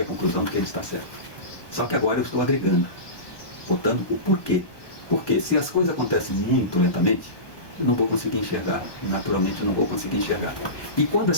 à conclusão de que ele está certo. Só que agora eu estou agregando, botando o porquê. Porque se as coisas acontecem muito lentamente, eu não vou conseguir enxergar. Naturalmente eu não vou conseguir enxergar. E quando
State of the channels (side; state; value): right; late; 1.2 ms